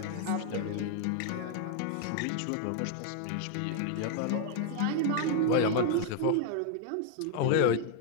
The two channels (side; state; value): both; different; correlation 0.00